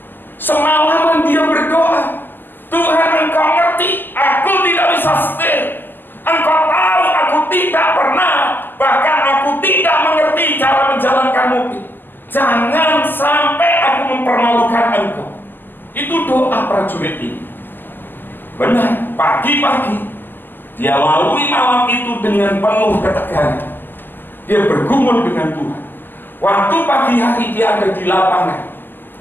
Semalaman dia berdoa, Tuhan, Engkau ngerti, aku tidak bisa setir. Engkau tahu aku tidak pernah, bahkan aku tidak mengerti cara menjalankan mobil. Jangan sampai aku mempermalukan Engkau. Itu doa prajurit ini. Benar, pagi-pagi dia lalui malam itu dengan penuh ketegangan. Dia bergumul dengan Tuhan. Waktu pagi hari dia ada di lapangan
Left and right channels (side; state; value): right; late; 0.091 ms